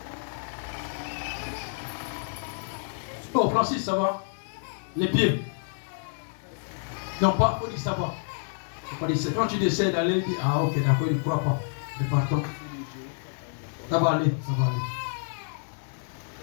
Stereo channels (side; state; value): right; silent; digital silence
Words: Oh, Francis, ça va? Les pieds. Non, pas, il faut dire ça va. C'est quand tu décides d'aller, il dit, ah ok, d'accord, il ne croit pas. Mais partons. Ça va aller.